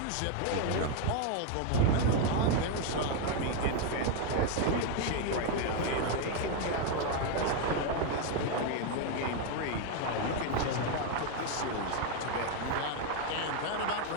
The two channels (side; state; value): both; different; correlation 0.01